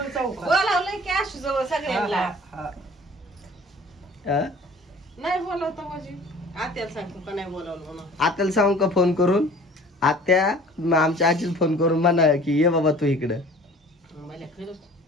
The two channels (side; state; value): both; normal; correlation 0.47